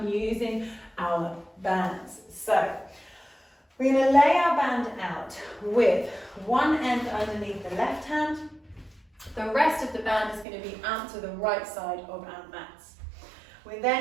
using our bands. So we're going to lay our band out with one end underneath the left hand. The rest of the band is going to be out to the right side of our mats. We're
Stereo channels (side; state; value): left; drops out; at 10.5 s